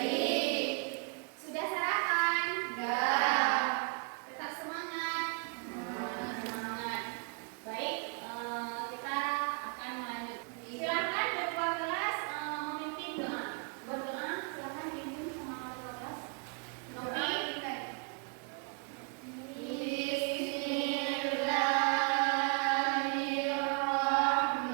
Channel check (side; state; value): left; quieter; 38.8 dB